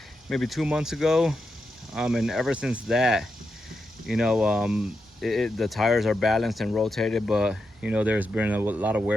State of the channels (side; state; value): both; normal; correlation 0.86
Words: maybe 2 months ago. And ever since that, the tires are balanced and rotated, but there's been a lot of